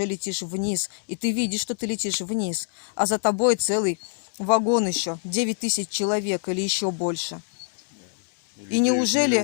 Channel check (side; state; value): right; silent; 62 dB below the other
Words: летишь вниз, и ты видишь, что ты летишь вниз, а за тобой целый вагон еще, 9000 человек или еще больше. И